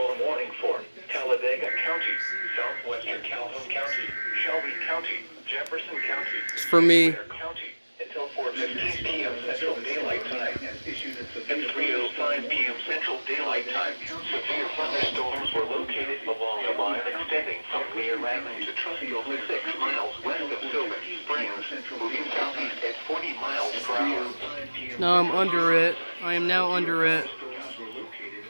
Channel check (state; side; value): inverted; both; correlation -1.00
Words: warning for Talladega County, southwestern Calhoun County, Shelby County, Jefferson County, It's for me. Clare County, until 4:15 p.m. Central Daylight Time. At 3:05 p.m. Central Daylight Time, severe thunderstorms were located along a line extending from Clear Island to Trustfield, 6 miles west of Sylvan Springs, moving southeast at 40 miles per hour. No, I'm under it. I am now under it.